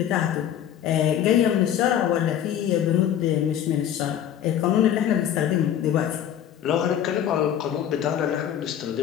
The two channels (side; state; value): right; quieter; 10.2 dB